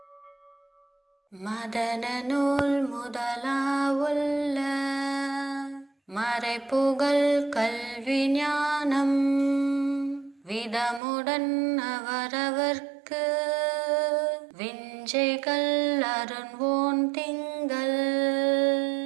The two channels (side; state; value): left; drops out; at 11.0 s